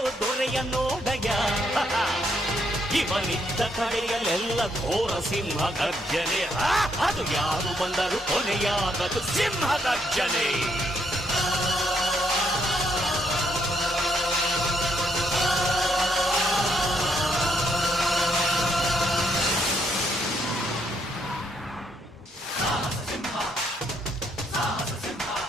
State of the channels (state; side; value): normal; both; correlation 0.74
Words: ದೊರೆಯ ನೋಡಯ. ಇವನಿದ್ದ ಕಡೆಯಲ್ಲೆಲ್ಲ ಘೋರ ಸಿಂಹ ಗರ್ಜನೆ, ಅದು ಯಾರು ಬಂದರು ಕೊನೆಯಾಗದು ಸಿಂಹ ಗರ್ಜನೆ.